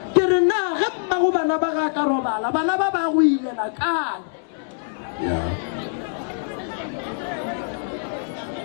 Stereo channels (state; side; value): silent; right; digital silence